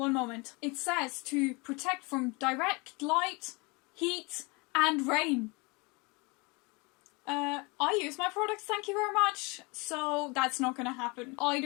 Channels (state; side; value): quieter; right; 27.8 dB